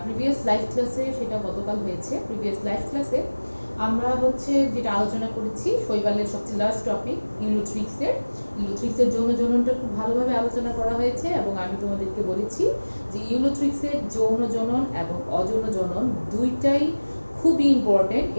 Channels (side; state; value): both; inverted; correlation -1.00